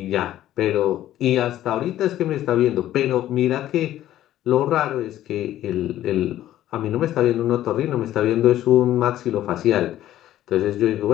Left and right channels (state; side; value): quieter; right; 13.1 dB